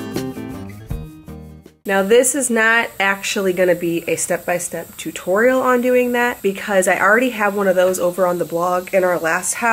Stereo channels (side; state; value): both; identical; correlation 1.00